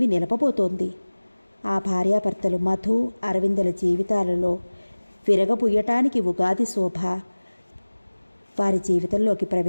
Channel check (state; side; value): inverted; both; correlation -1.00